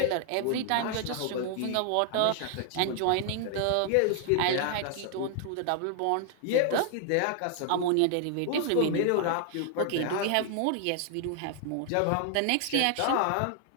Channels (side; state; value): both; different; correlation 0.00